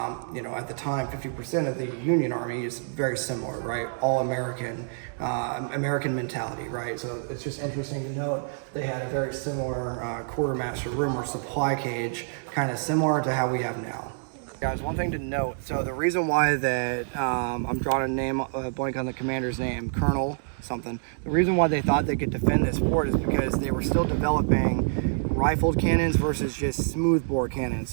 you know, at the time, 50% of the Union Army is very similar, right? All American, American mentality, right? So it's just interesting to note they had a very similar quartermaster room or supply cage, kind of similar to how we have now. Guys, one thing to note, so the reason why that I'm drawing a name, blank on the commander's name, Colonel something, the reason why they thought they could defend this fort is because they were still developing rifled cannons versus just smoothbore cannons.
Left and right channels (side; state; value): left; silent; digital silence